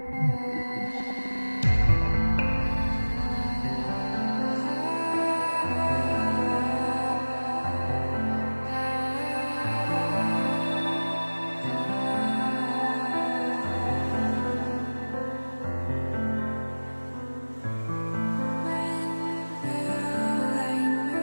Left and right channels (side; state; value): both; inverted; correlation -1.00